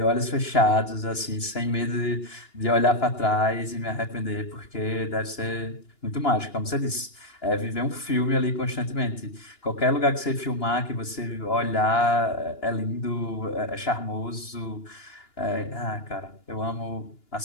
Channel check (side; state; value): right; late; 2.9 ms